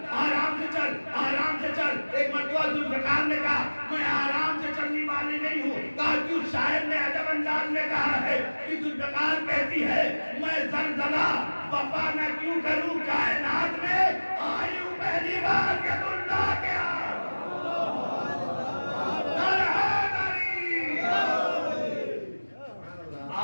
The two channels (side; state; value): both; inverted; correlation -1.00